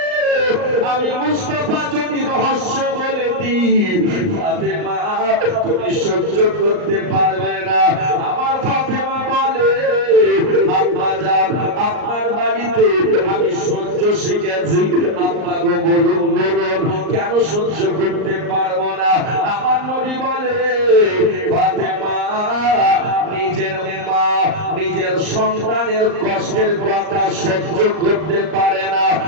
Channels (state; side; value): late; left; 39 ms